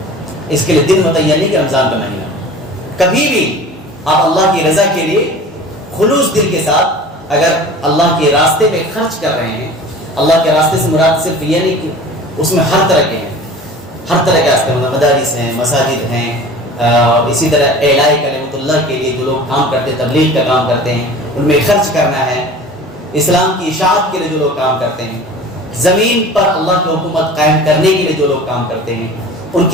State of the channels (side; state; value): both; normal; correlation 0.41